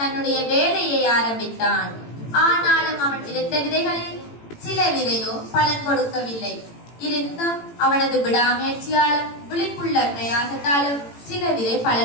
வேலையை ஆரம்பித்தான். ஆனாலும் அவன் விதைத்த விதைகளில் சில விதையோ பலன் கொடுக்கவில்லை. இருந்தும் அவனது விடாமுயற்சியாலும் விழிப்புள்ள பிரயாசத்தாலும் சில விதை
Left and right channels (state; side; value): late; right; 18 ms